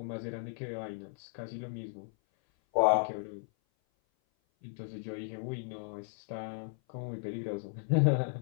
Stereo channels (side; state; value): right; silent; 54 dB below the other